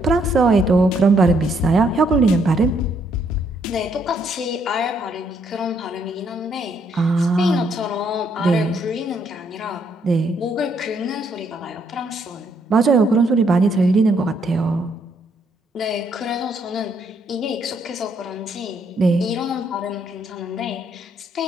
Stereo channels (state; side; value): normal; both; correlation 0.71